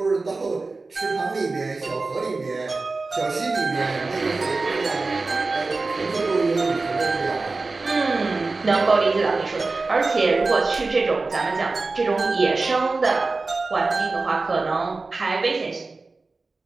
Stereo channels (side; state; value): left; quieter; 3.7 dB